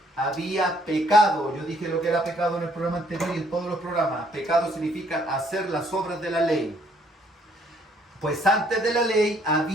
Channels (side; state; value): both; normal; correlation 0.65